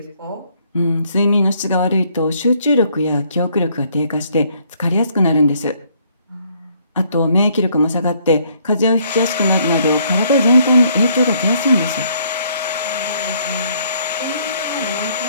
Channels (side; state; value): both; inverted; correlation -0.67